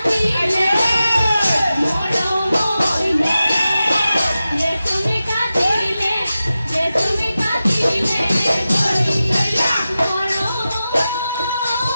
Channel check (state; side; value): inverted; both; correlation -0.93